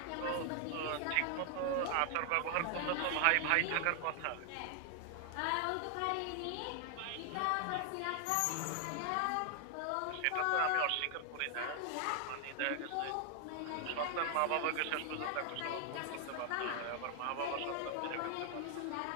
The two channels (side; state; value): both; different; correlation 0.00